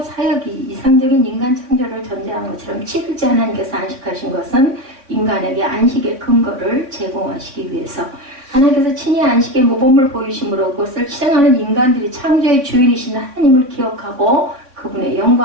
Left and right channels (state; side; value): late; left; 3.6 ms